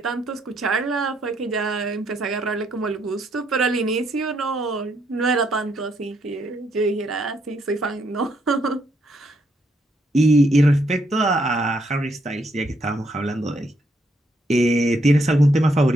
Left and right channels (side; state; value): both; normal; correlation 0.74